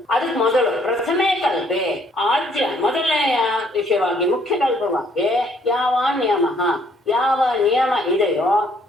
ಅದಕ್ಕೆ ಮೊದಲು ಪ್ರಥಮೇ ಕಲ್ಪೆ, ಆದ್ಯ ಮೊದಲನೆಯ ವಿಷಯವಾಗಿ ಮುಖ್ಯ ಕಲ್ಪವಾಗಿ ಯಾವ ನಿಯಮ, ಯಾವ ನಿಯಮ ಇದೆಯೋ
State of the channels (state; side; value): normal; both; correlation 0.65